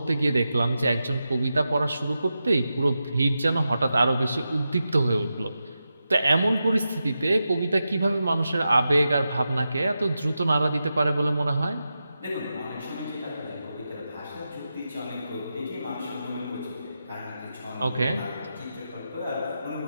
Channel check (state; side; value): inverted; both; correlation -0.90